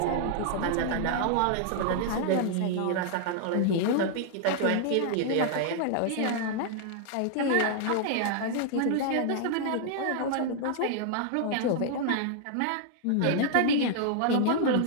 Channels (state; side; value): different; both; correlation -0.01